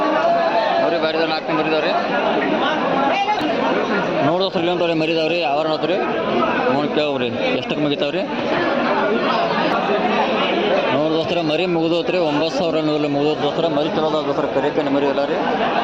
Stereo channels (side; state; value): left; noise; rumble, 29 dB below the sound